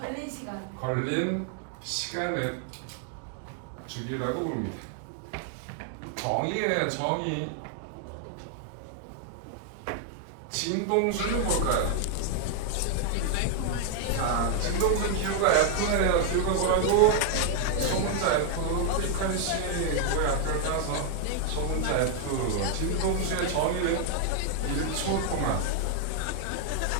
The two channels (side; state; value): both; different; correlation 0.00